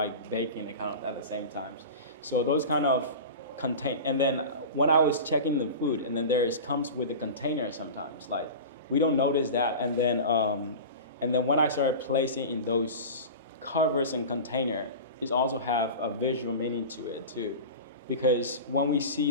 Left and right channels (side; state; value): both; inverted; correlation -0.31